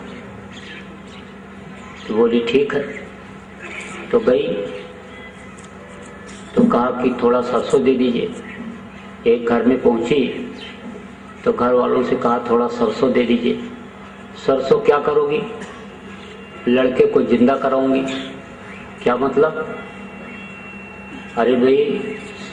तो बोली ठीक है। तो गई तो कहा कि थोड़ा सरसों दे दीजिए। एक घर में पहुंची तो घर वालों से कहा थोड़ा सरसों दे दीजिए। सरसों क्या करोगी? लड़के को जिंदा कराऊंगी। क्या मतलब? अरे भाई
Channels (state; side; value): identical; both; correlation 1.00